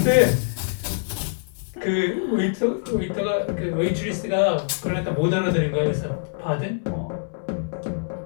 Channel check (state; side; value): silent; right; digital silence